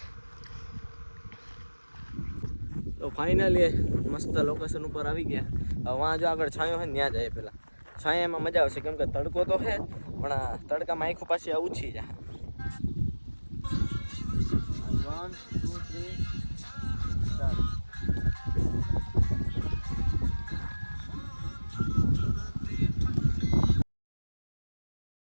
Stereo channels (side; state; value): both; inverted; correlation -1.00